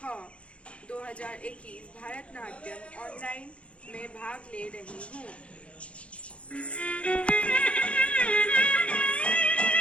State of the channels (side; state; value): right; late; 0.061 ms